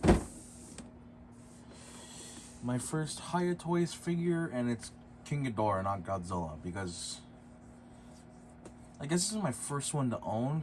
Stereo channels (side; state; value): both; identical; correlation 1.00